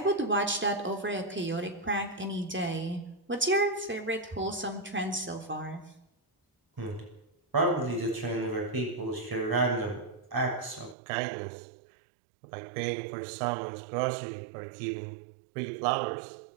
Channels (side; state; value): left; drops out; at 11.0 s